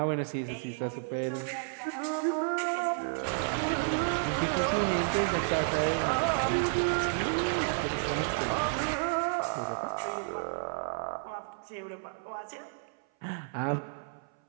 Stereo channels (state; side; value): silent; left; 57 dB below the other